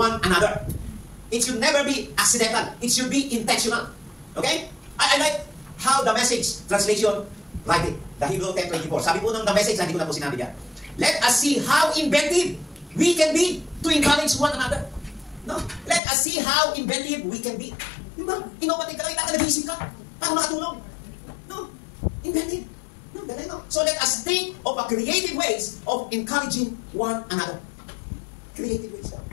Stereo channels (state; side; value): drops out; right; at 16.0 s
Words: another. It should never be accidental. It should be intentional. Okay? I like how the Message translation write it. The Hebrew 10:24. Sabi po ng the Message, hindi ko na po sinabi yan. Let us see how inventive we can be to encourage one another. No? Let us see how inventive we can be. Diba? Innovative ka lang, nag-isip ka para makatulong. No? Inventive. No, no. So let us think of a creative ways of encouraging one another. Creative ways.